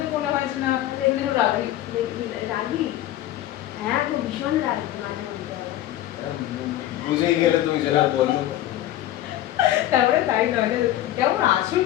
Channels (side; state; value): right; quieter; 13.7 dB